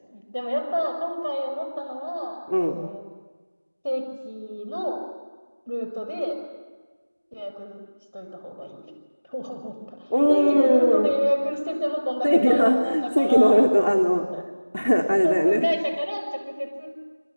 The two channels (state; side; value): inverted; both; correlation -1.00